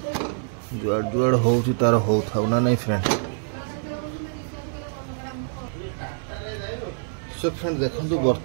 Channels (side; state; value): left; silent; digital silence